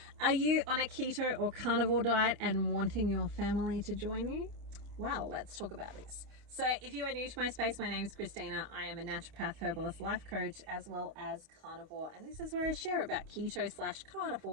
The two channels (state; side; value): late; left; 28 ms